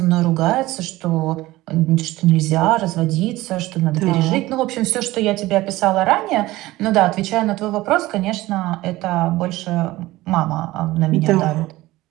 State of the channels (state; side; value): quieter; left; 18.0 dB